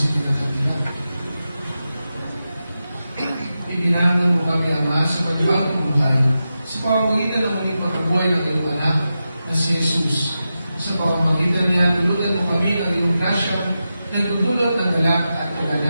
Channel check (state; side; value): inverted; both; correlation -0.91